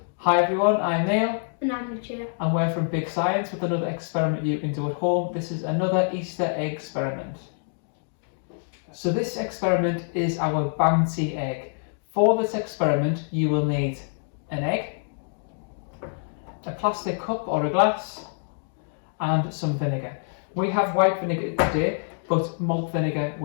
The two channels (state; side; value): silent; right; digital silence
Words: Hi everyone, I'm Neil. And I'm Lucia. And we're from Big Science with another experiment you can do at home. This is another Easter egg experiment. So this experiment is our Bouncy Egg. For this experiment you will need an egg, a plastic cup or a glass, and some vinegar. We have white vinegar today, but malt vinegar